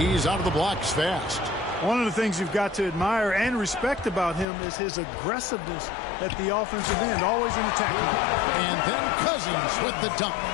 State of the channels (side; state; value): right; drops out; at 4.5 s